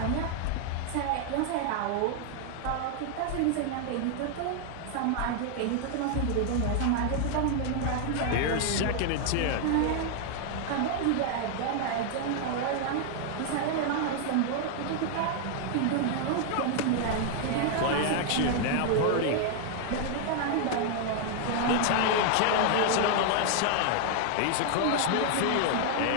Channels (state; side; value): different; both; correlation 0.00